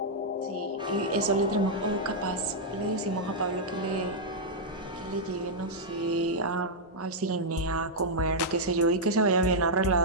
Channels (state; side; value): normal; both; correlation -0.06